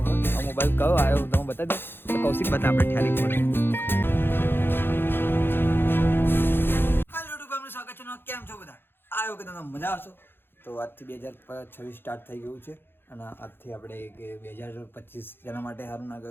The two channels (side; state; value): right; late; 0.10 ms